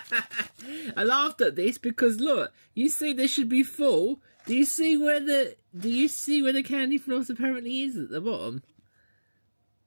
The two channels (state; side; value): inverted; both; correlation -1.00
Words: I laughed at this because look, you see this should be full. Do you see where the candy floss apparently is at the bottom?